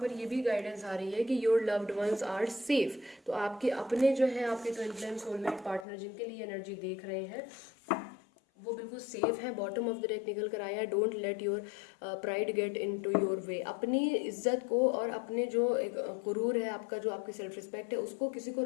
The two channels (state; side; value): drops out; right; at 5.9 s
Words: ये भी गाइडेंस आ रही है कि your loved ones are safe, तो आपके अपने जो हैं, आपके ट्विन फ्लेम सोलमेट पार्टनर जिनके लिए एनर्जी देख रहे हैं, वो बिल्कुल सेफ है। बॉटम ऑफ द डेक निकल कर आया है, don't let your pride get into your way. अपनी इज्जत को और अपने जो एक गुरूर है आपका, जो आपकी सेल्फ रिस्पेक्ट है, उसको किसी को